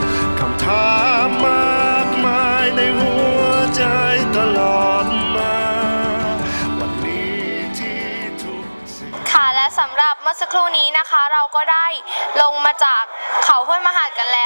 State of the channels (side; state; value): both; inverted; correlation -1.00